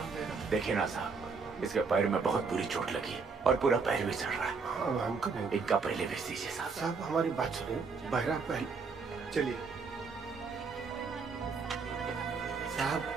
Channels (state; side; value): quieter; left; 4.9 dB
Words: देखिए ना साहब, इसके पैर में बहुत बुरी चोट लगी है और पूरा पैर भी चढ़ रहा है। इनका पहले भेज दीजिए साहब। साहब हमारी बात सुनिए। बहरा पहले चलिए साहब।